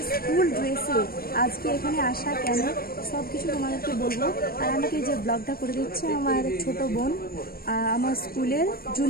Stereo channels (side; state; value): right; late; 0.43 ms